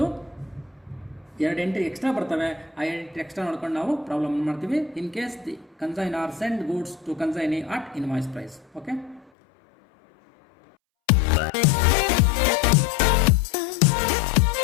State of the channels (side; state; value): right; drops out; at 9.3 s